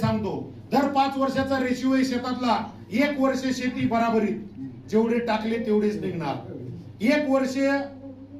दर 5 वर्षाचा रेशिओ आहे शेतातला. 1 वर्ष शेती बराबरीत, जेवढे टाकले तेवढेच निघणार. 1 वर्ष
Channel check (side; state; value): both; identical; correlation 1.00